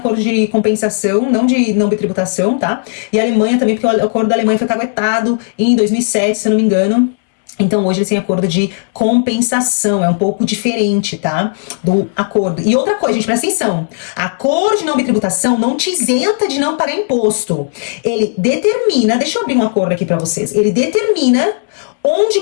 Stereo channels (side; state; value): right; silent; 69 dB below the other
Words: de compensação, não de não bitributação, tá? E a Alemanha também, porque o acordo da Alemanha foi caguetado em 2007, se eu não me engano. Então hoje eles têm acordo de compensação, é um pouco diferente, tá? Do acordo. E outra coisa, gente, presta atenção. Acordo de não bitributação não te isenta de não pagar imposto. Ele determina, deixa eu abrir um acordo aqui pra vocês. Ele determina onde